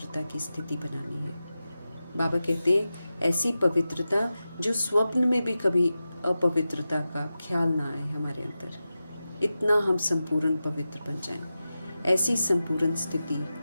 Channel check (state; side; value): inverted; both; correlation -0.93